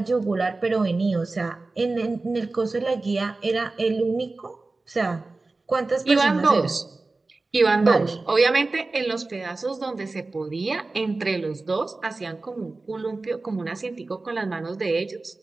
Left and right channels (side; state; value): left; quieter; 3.4 dB